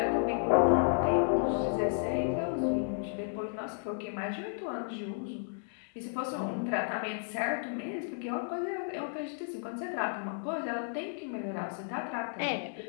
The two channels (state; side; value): silent; right; digital silence